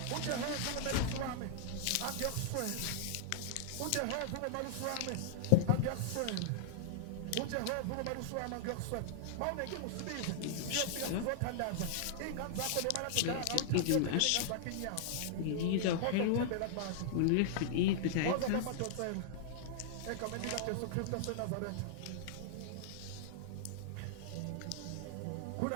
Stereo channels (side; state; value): both; different; correlation -0.01